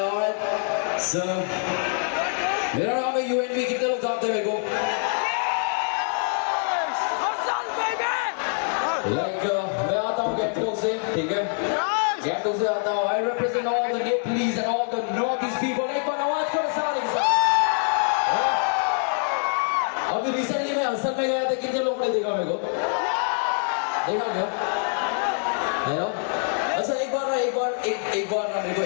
So, मेरा नाम है यूएनबी, कितने लोग जानते हैं मेरे को? मैं आता हूँ गैंगटॉक से, ठीक है? गैंगटॉक से आता हूँ। I represent all the Nepalese and all the Northeast people. एक बार आवाज करो सारे। अभी रिसेंटली मैं असल में गया था, कितने लोगों ने देखा मेरे को? देखा क्या? अच्छा एक बार ना मेरे को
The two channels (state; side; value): silent; right; 58 dB below the other